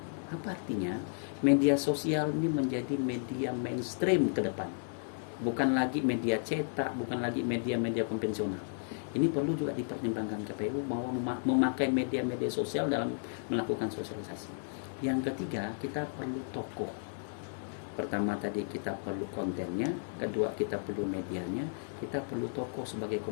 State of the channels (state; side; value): silent; right; digital silence